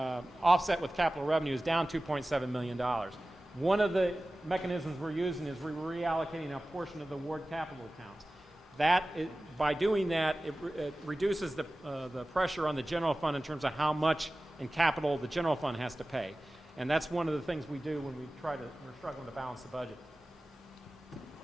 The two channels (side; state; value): both; normal; correlation 0.96